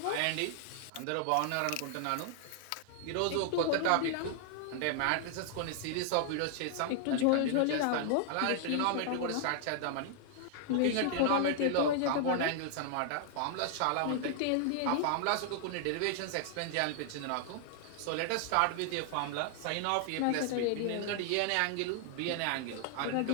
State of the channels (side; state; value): both; different; correlation 0.00